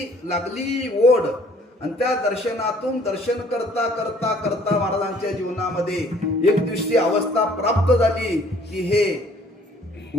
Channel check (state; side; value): normal; both; correlation 0.58